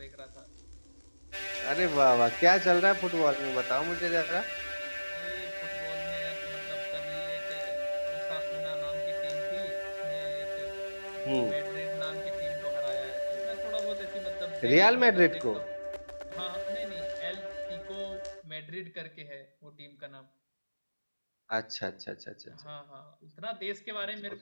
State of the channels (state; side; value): inverted; both; correlation -1.00